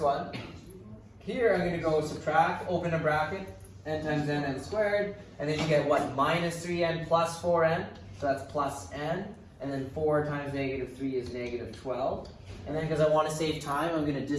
one. Here I'm going to go subtract, open a bracket, n times n squared, and then you get what? Minus 3n plus 4n, so that's plus n, and then 4 times negative 3 is negative 12. And then because I want to save time, I'm going to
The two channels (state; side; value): identical; both; correlation 1.00